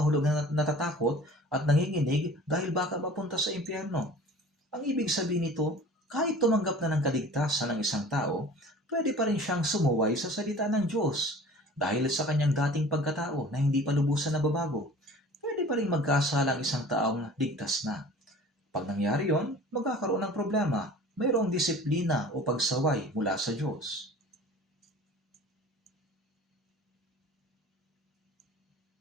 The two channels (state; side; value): normal; both; correlation 0.44